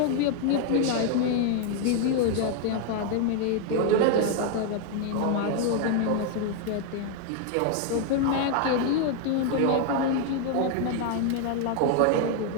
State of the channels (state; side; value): different; both; correlation 0.00